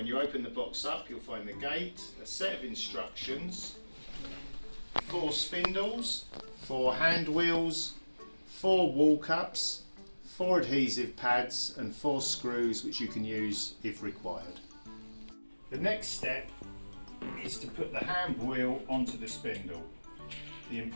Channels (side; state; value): both; inverted; correlation -1.00